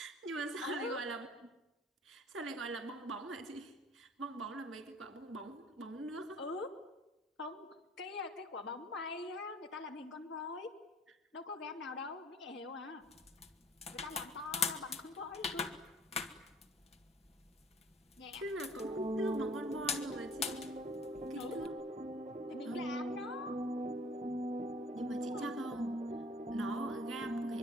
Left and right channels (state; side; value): normal; both; correlation 0.52